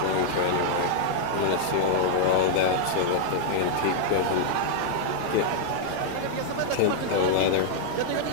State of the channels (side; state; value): both; different; correlation -0.01